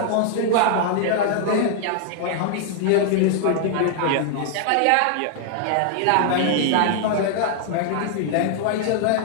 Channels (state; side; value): different; both; correlation -0.01